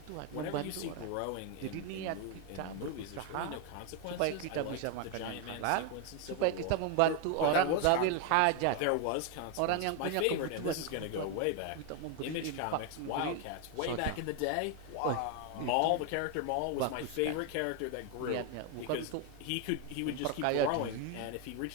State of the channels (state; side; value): different; both; correlation 0.01